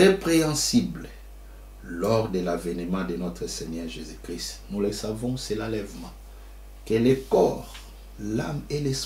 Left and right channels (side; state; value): both; identical; correlation 1.00